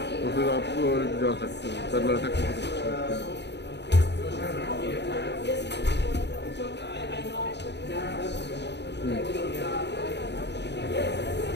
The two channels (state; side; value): late; right; 0.50 ms